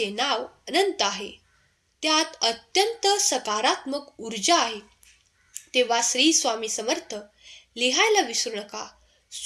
नाव अनंत आहे, त्यात अत्यंत सकारात्मक ऊर्जा आहे. तेव्हा श्री स्वामी समर्थ लिहायला विसरू नका.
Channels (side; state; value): both; identical; correlation 1.00